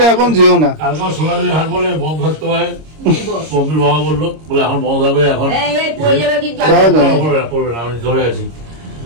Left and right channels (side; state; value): left; late; 26 ms